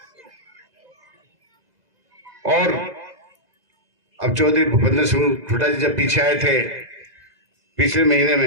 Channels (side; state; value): left; late; 2.0 ms